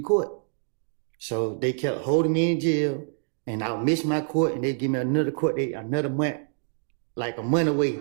court. So they kept holding me in jail, and I would miss my court, and they'd give me another court date, another month, like a month away.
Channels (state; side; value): silent; left; digital silence